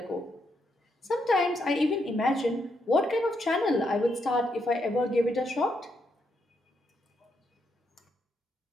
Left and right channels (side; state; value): both; normal; correlation 0.79